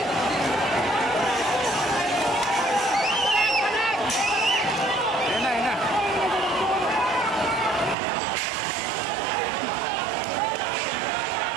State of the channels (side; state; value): left; drops out; at 8.0 s